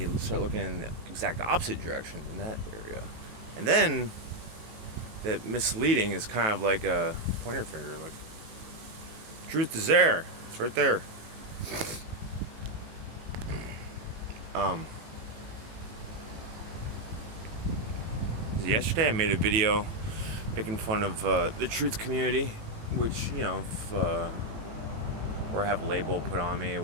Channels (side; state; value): left; late; 18 ms